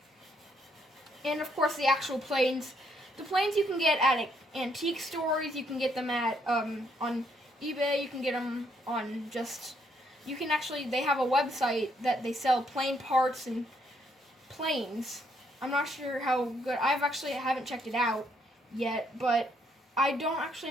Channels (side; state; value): both; normal; correlation 0.72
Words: And of course the actual planes. The planes you can get at antique stores. You can get them at on eBay. You can get them on you can actually, they have a website that they sell plane parts and planes. I'm not sure how good, haven't checked it out yet, but I don't actually